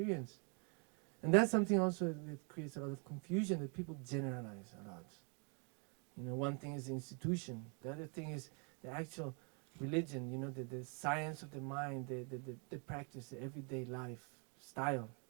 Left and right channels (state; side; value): quieter; left; 37.4 dB